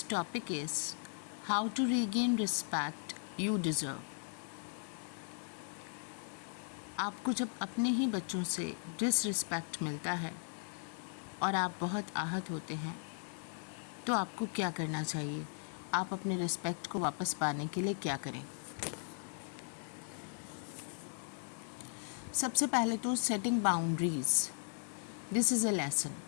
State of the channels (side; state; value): right; silent; 53 dB below the other